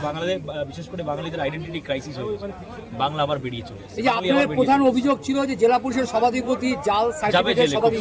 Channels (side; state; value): both; identical; correlation 1.00